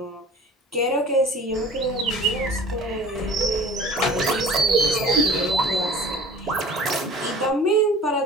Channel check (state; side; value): normal; both; correlation 0.44